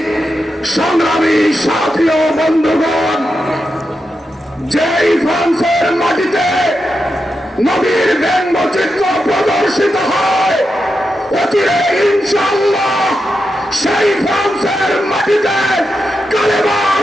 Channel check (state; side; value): normal; both; correlation 0.87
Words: সংগ্রামী সাথী ও বন্ধুগণ, যেই ফ্রান্সের মাটিতে নবীর ব্যঙ্গচিত্র প্রদর্শিত হয়, অচিরে ইনশাআল্লাহ সেই ফ্রান্সের মাটিতে কালেমার